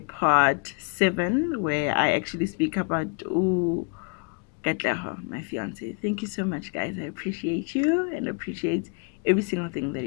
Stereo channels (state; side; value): quieter; right; 34.7 dB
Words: part 7, where I actually speak about Katleho, my fiance. Thank you so much, guys. I appreciate you and appreciate every single thing that